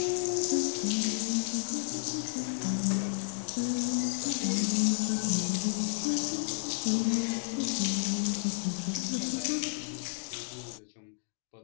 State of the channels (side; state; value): right; silent; digital silence